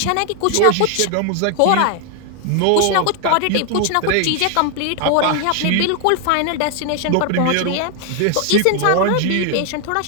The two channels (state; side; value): different; both; correlation 0.00